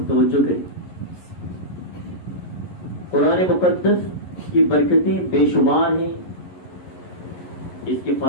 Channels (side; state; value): right; late; 11 ms